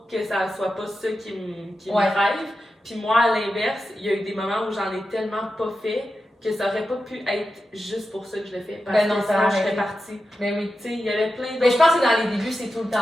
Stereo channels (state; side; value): normal; both; correlation 0.91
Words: que ça soit pas ça qui me Ouais. drive. Puis moi, à l'inverse, il y a eu des moments où j'en ai tellement pas fait que ça aurait pas pu être juste pour ça que je le fais. Parce Ben non, que ça sinon, je aurait serais été. partie. Ben oui. Tu sais, il y avait plein d'autres. Mais je pense que dans les débuts, c'est tout le